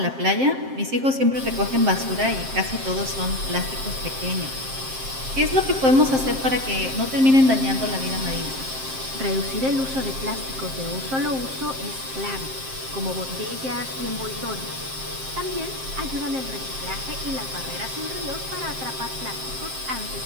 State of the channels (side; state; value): left; late; 7.6 ms